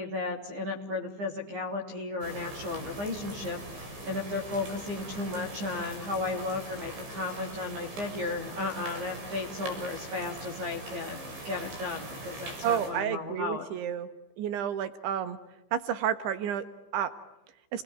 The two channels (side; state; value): left; late; 15 ms